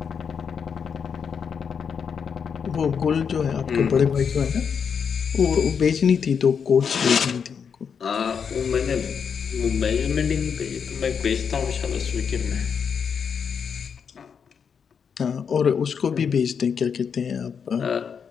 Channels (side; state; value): right; quieter; 6.7 dB